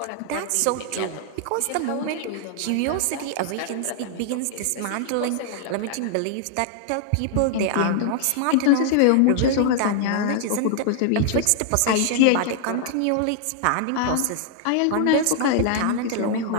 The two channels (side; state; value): both; different; correlation 0.00